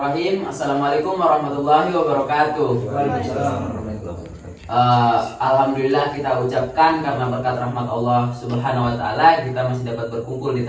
Assalamualaikum warahmatullahi wabarakatuh. Alhamdulillah kita ucapkan karena berkat rahmat Allah Subhanahu wa taala kita masih dapat berkumpul di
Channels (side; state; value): both; identical; correlation 1.00